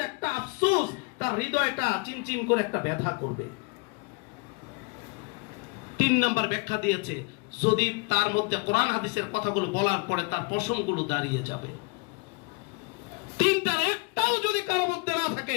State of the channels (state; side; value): quieter; right; 30.4 dB